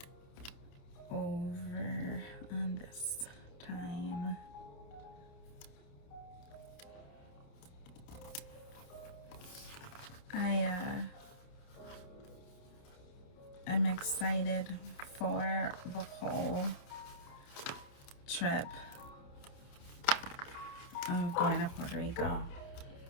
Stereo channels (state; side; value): late; right; 29 ms